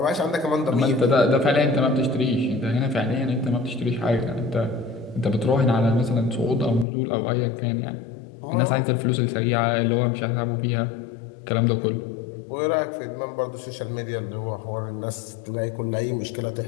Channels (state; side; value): drops out; right; at 6.9 s